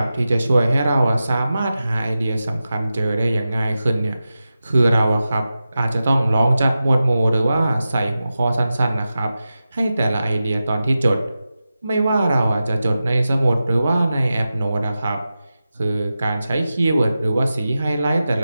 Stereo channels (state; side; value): inverted; both; correlation -0.93